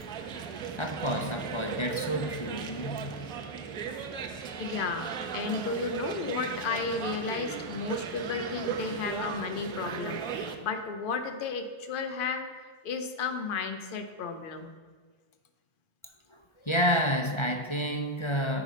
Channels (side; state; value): right; late; 1.3 ms